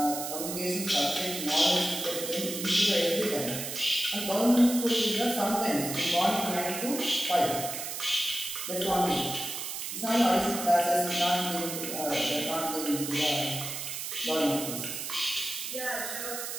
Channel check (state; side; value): noise; right; hiss, 5 dB below the sound